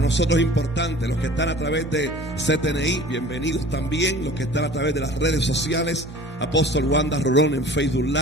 es importante, los que están a través de CTNI, bienvenidos también, los que están a través de las redes sociales, Apóstol Wanda Rolón en Facebook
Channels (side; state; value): both; normal; correlation 0.44